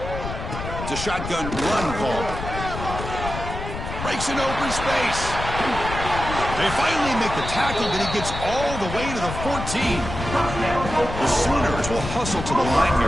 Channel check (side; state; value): left; noise; rumble, 7 dB below the sound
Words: It's a shotgun run call. Breaks an open space. They finally make the tackle, but he gets all the way to the 14. The Sooners will hustle to the line